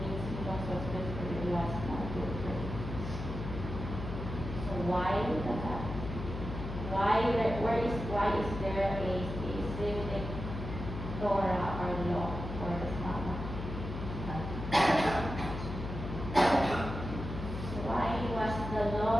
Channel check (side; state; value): left; noise; hum, 7 dB below the sound